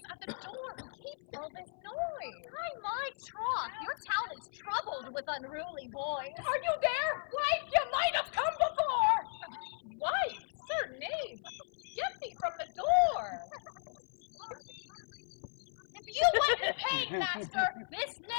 at the door who keeps all this noise? By my troth, your town is troubled with unruly boys. Are you there? Wife, you might have come before! Wife, sir knave, get thee from the door! If you went in pain, master, this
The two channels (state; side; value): silent; right; 54 dB below the other